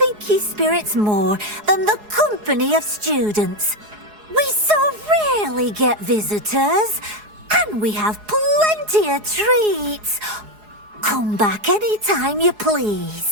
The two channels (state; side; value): late; left; 4.8 ms